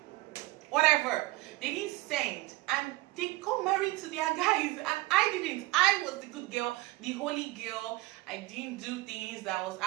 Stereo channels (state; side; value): quieter; left; 19.4 dB